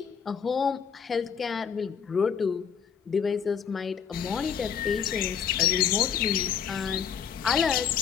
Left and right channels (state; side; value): quieter; right; 7.4 dB